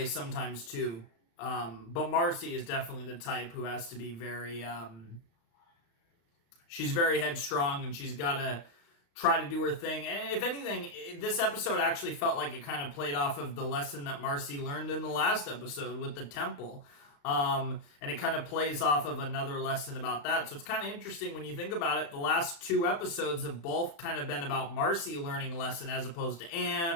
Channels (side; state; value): right; late; 35 ms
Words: sometimes too, but Marcy is definitely the type who has to be very, she's very headstrong, and she's got to try to do her thing. And if anything, this episode actually felt like it kind of played off of the lesson that Marcy learned in the last episode with the temple. And it kind of plays off of another lesson about that. So it's kind of interesting when you think about it. The last 2 episodes have both kind of been about Marcy learning a lesson as opposed to Anne